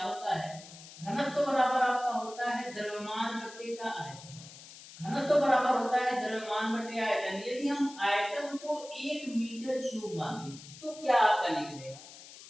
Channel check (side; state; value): left; noise; hiss, 17 dB below the sound